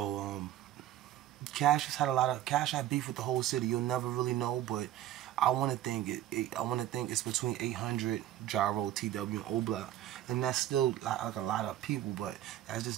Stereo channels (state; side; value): quieter; left; 13.1 dB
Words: Cash had beef with the whole city. You'll never really know, but I want to think it's between 800 Gyro, TW, and O-Block, and that's still like a lot of people, but that's